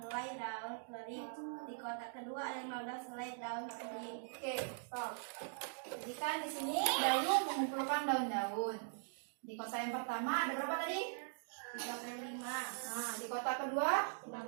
daun kering. Di kotak kedua ada 15 helai daun kering. Oke, stop. Jadi kan di sini Dayu mengumpulkan daun-daun. Di kotak yang pertama ada berapa tadi? 35. Nah, di kotak kedua 15.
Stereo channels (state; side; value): silent; left; digital silence